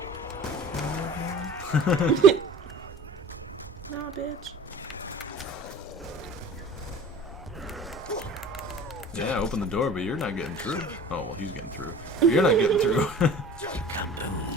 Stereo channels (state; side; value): normal; both; correlation 0.42